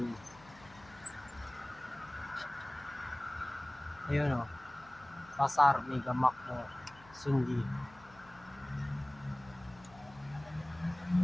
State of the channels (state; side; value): noise; left; hum, 23 dB below the sound